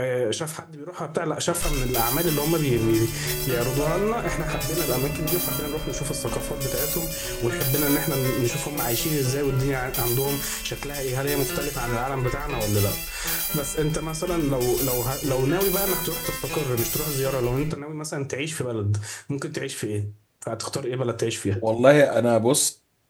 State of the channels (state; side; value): identical; both; correlation 1.00